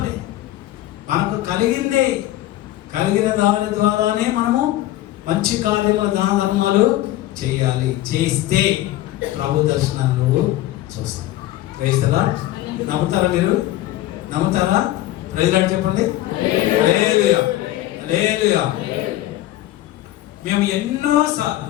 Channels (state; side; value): quieter; right; 14.8 dB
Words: మనకు కలిగిన దాని ద్వారానే మనము మంచి కార్యములు, దాన ధర్మాలు చేయాలి. చేస్తే ప్రభు దర్శనాన్ని నువ్వు చూస్తావు. ప్రైజ్లా నమ్ముతారా? మీరు నమ్ముతారా? ప్రైజ్లా చెప్పండి. హల్లెలూయా, హల్లెలూయా. మేము ఎన్నోసార్లు,